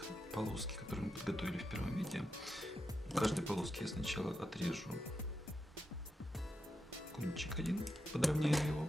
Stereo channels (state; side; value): normal; both; correlation 0.86